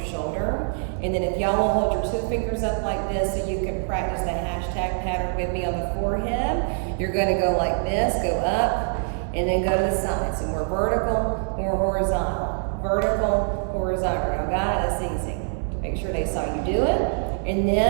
And then if y'all will hold your 2 fingers up like this so you can practice the hashtag pattern with me on the forehead, you're gonna go like this, go up, and then go to the side. So more vertical, more horizontal. Vertical, horizontal. Y'all got it? That's easy. Make sure they saw you do it. And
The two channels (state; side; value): silent; left; 62 dB below the other